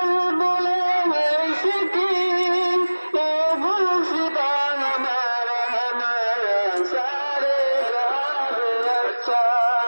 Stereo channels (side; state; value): both; inverted; correlation -1.00